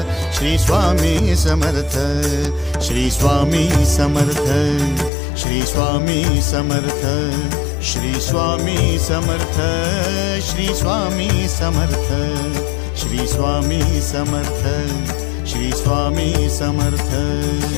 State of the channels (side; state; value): right; drops out; at 5.1 s